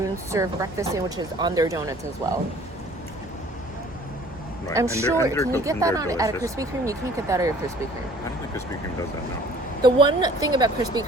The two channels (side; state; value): both; normal; correlation 0.52